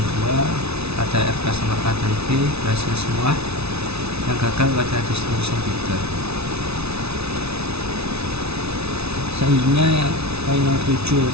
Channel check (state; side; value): late; left; 0.80 ms